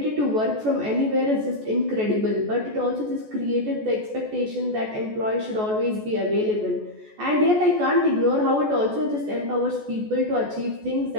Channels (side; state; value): left; late; 14 ms